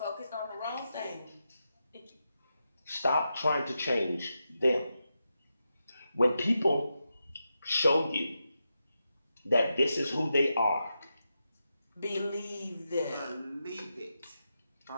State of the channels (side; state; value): both; inverted; correlation -0.88